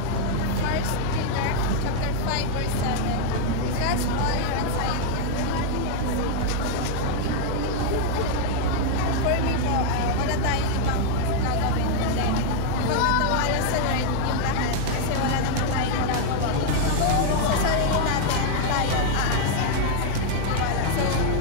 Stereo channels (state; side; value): different; both; correlation 0.00